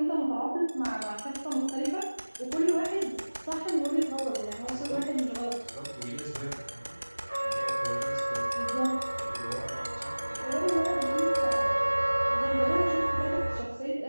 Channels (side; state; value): both; inverted; correlation -1.00